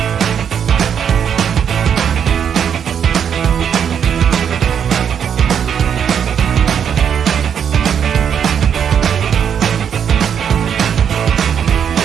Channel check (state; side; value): quieter; left; 8.1 dB